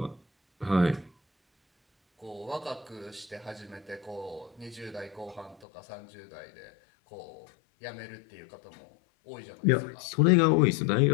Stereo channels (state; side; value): drops out; right; at 5.7 s